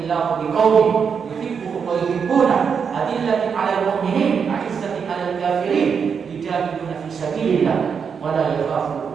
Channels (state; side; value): quieter; left; 6.5 dB